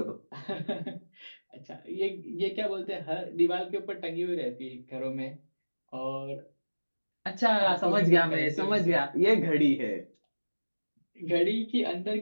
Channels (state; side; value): inverted; both; correlation -1.00